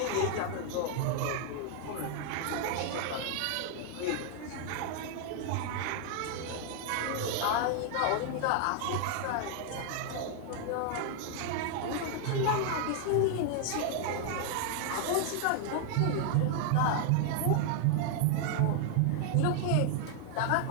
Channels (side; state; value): both; different; correlation 0.00